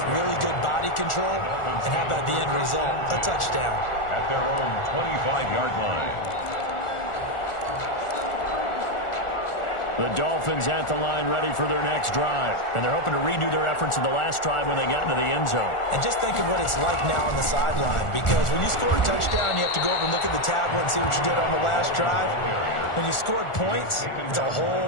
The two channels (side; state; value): right; late; 1.4 ms